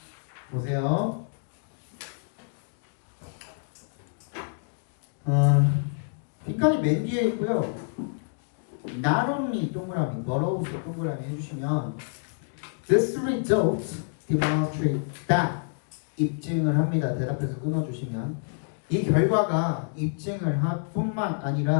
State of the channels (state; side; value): silent; right; digital silence